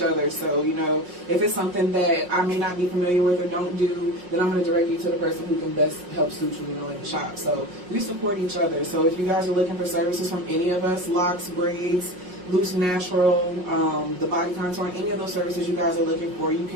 other. So, you know, if it's something that I may not be familiar with or don't do, then I'm going to direct you to the person who can best help suit you, you know, in the shop. So we support each other. So if you guys are looking for services from any of us, locks, braids, Loose Natural, the Body Contour, any of those services you guys are looking for, you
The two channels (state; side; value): late; left; 5.5 ms